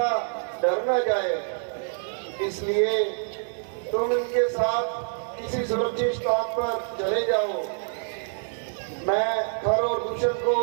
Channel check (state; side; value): silent; left; digital silence